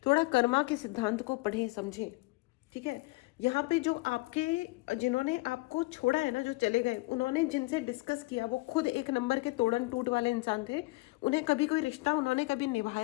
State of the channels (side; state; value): right; quieter; 23.0 dB